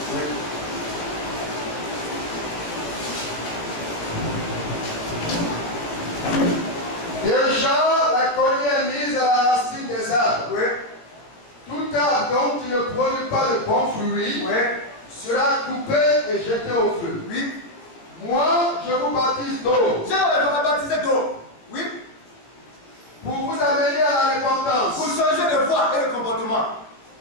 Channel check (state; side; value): late; right; 17 ms